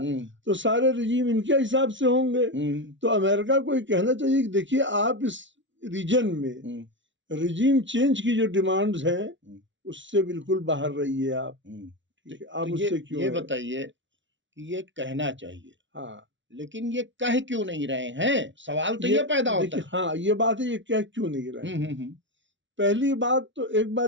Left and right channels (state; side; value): late; left; 0.55 ms